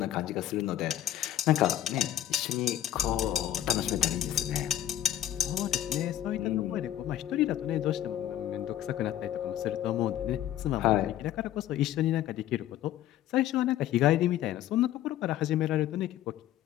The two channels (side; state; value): right; quieter; 12.2 dB